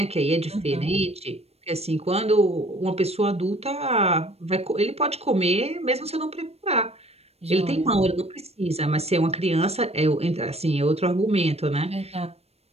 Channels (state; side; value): late; left; 0.30 ms